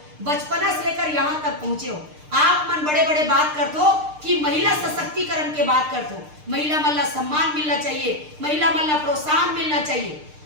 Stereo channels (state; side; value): late; left; 6.6 ms